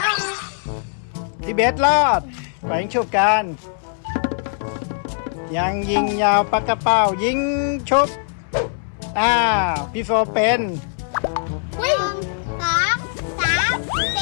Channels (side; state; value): right; silent; 65 dB below the other